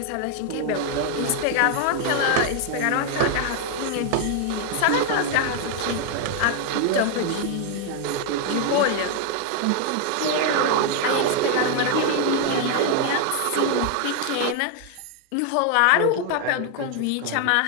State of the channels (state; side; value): different; both; correlation 0.00